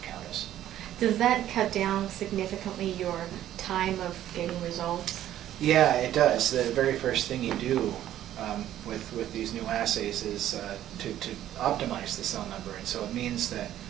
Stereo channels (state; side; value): quieter; left; 12.3 dB